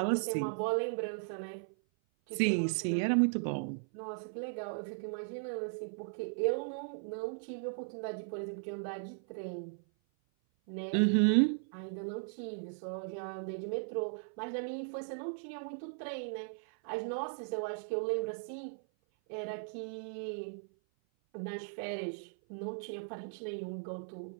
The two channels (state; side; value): silent; left; 53 dB below the other